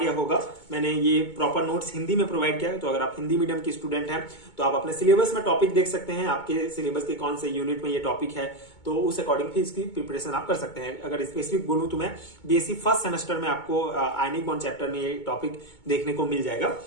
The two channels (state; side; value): late; right; 2.2 ms